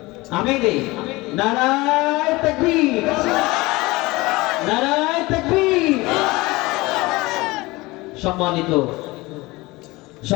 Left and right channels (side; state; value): right; quieter; 21.7 dB